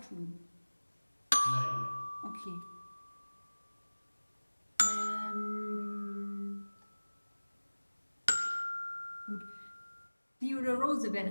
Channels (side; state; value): both; inverted; correlation -1.00